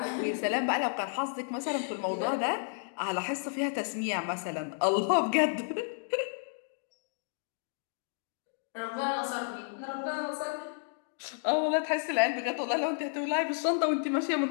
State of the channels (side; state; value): right; silent; digital silence